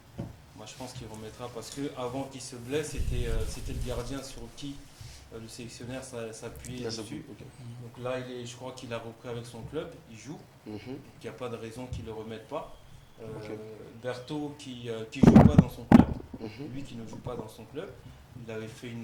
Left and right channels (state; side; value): identical; both; correlation 1.00